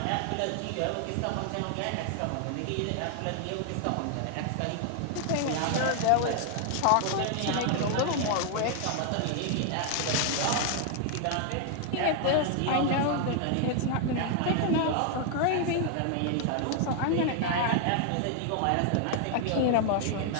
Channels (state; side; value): different; both; correlation 0.00